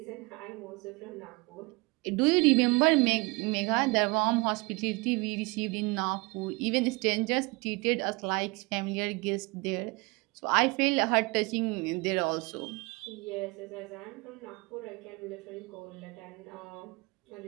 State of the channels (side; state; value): left; quieter; 26.4 dB